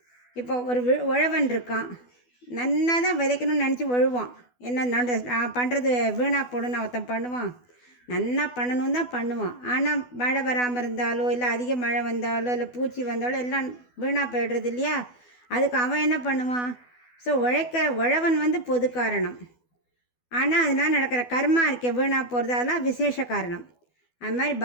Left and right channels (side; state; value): right; late; 12 ms